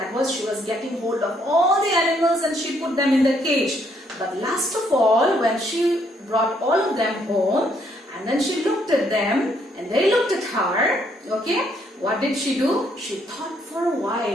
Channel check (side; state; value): both; normal; correlation 0.70